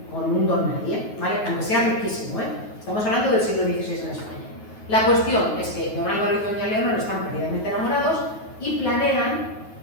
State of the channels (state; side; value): late; right; 9.4 ms